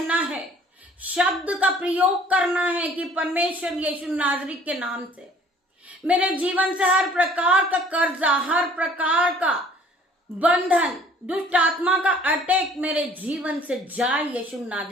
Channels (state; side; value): normal; both; correlation 0.54